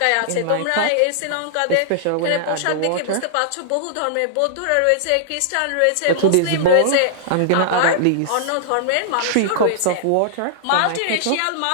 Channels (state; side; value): different; both; correlation -0.01